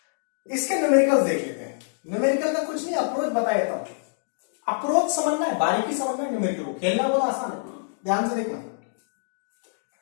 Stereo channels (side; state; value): right; silent; digital silence